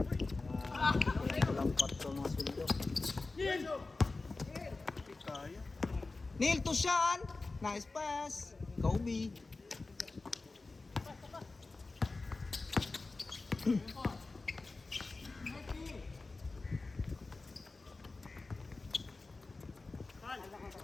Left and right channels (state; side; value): quieter; right; 3.6 dB